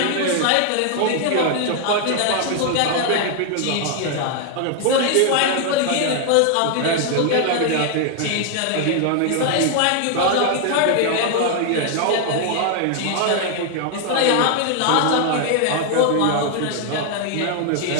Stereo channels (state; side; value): different; both; correlation 0.00